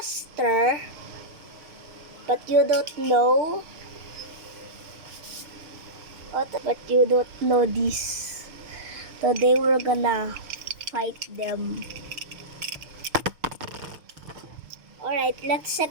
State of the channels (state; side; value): late; left; 6.5 ms